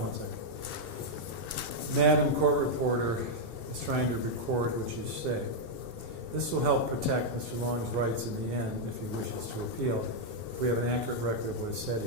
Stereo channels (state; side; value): late; left; 2.7 ms